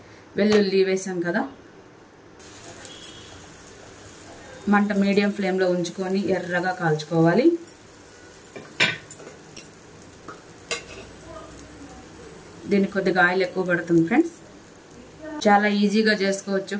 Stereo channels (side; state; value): both; identical; correlation 1.00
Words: వెల్లుల్లి వేసాం కదా. మంట మీడియం ఫ్లేమ్లో ఉంచుకొని ఎర్రగా కాల్చుకోవాలి. దీనికి కొద్దిగా ఆయిల్ ఎక్కువ పడుతుంది ఫ్రెండ్స్. చాలా ఈజీగా చేసుకోవచ్చు